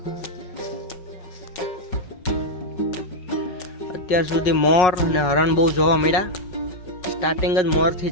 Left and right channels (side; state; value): right; late; 5.4 ms